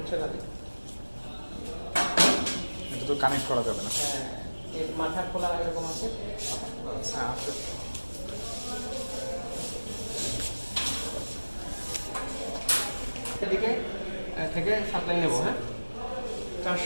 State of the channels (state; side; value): inverted; both; correlation -1.00